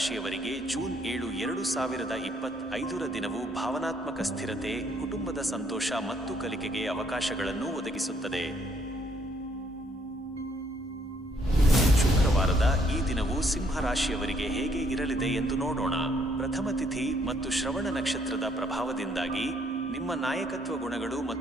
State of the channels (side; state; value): both; normal; correlation 0.68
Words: ಜೂನ್ 7, 2025 ದಿನವು ಭಾವನಾತ್ಮಕ ಸ್ಥಿರತೆ, ಕುಟುಂಬದ ಸಂತೋಷ ಮತ್ತು ಕಲಿಕೆಗೆ ಅವಕಾಶಗಳನ್ನು ಒದಗಿಸುತ್ತದೆ. ಶುಕ್ರವಾರದ ಈ ದಿನವು ಸಿಂಹ ರಾಶಿಯವರಿಗೆ ಹೇಗೆ ಇರಲಿದೆ ಎಂದು ನೋಡೋಣ. ಪ್ರಥಮ ತಿಥಿ ಮತ್ತು ಶ್ರವಣ ನಕ್ಷತ್ರದ ಪ್ರಭಾವದಿಂದಾಗಿ ನಿಮ್ಮ ನಾಯಕತ್ವ ಗುಣಗಳು